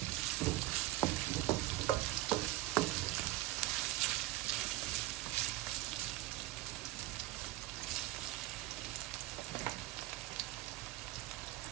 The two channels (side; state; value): left; quieter; 16.7 dB